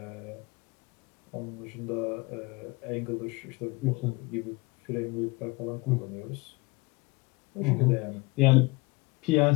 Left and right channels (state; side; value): quieter; right; 24.4 dB